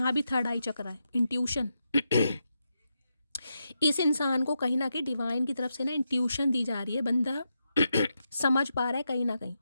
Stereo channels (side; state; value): both; inverted; correlation -0.85